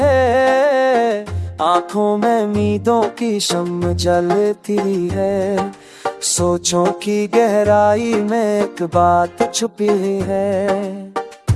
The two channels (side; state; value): both; identical; correlation 1.00